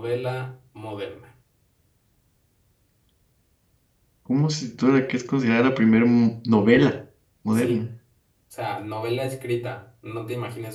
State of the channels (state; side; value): identical; both; correlation 1.00